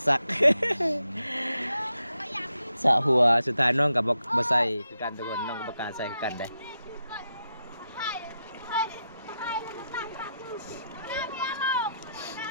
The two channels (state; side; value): inverted; both; correlation -0.85